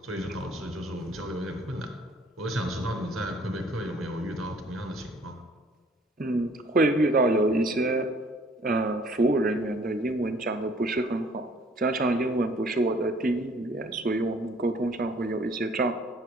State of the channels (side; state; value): both; normal; correlation 0.57